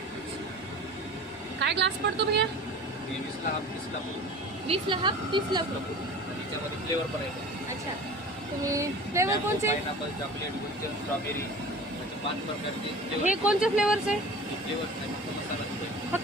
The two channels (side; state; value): both; normal; correlation 0.39